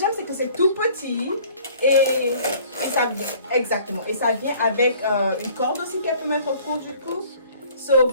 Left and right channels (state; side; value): inverted; both; correlation -0.53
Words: c'est que c'est tout petit et ça vient exactement. Et ça vient avec une corde aussi qu'elle peut mettre autour du cou. So